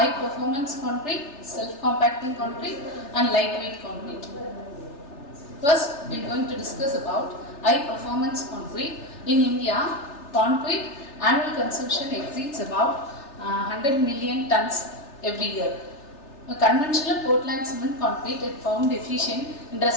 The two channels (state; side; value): late; right; 3.4 ms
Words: performance concrete, self-compacting concrete, and lightweight concrete. First, we are going to discuss about high performance concrete. In India, concrete annual consumption exceeds about 100 million tons every year. A conventional Portland cement concrete is found efficient in